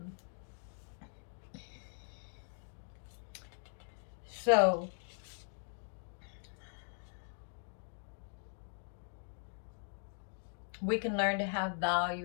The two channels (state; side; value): silent; right; digital silence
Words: So we can learn to have